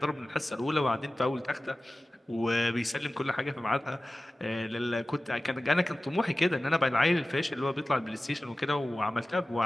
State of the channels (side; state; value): both; normal; correlation 0.96